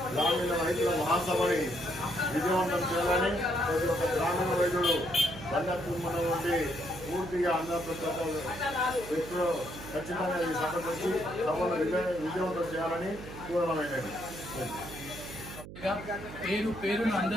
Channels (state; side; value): noise; right; hum, 13 dB below the sound